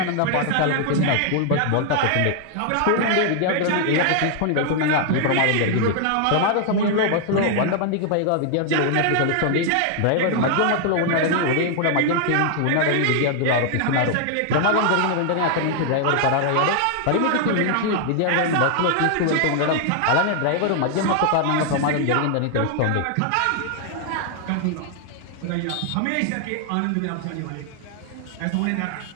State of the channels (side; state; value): both; different; correlation 0.00